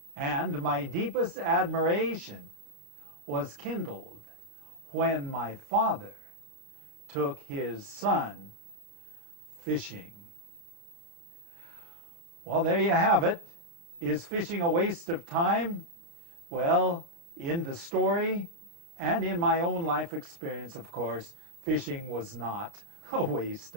And my deepest admiration was kindled when my father took his son fishing. Well, there you have it. Is fishing a waste of time? Well, in the story and in my own life experience, of course, fishing was not a waste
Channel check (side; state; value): left; late; 35 ms